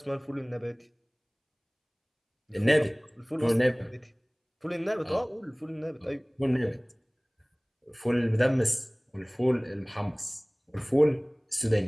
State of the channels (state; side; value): identical; both; correlation 1.00